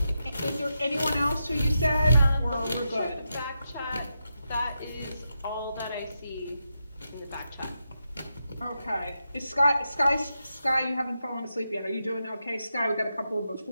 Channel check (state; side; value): inverted; both; correlation -0.86